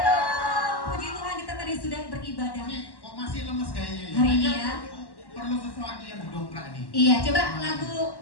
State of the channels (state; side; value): late; right; 1.1 ms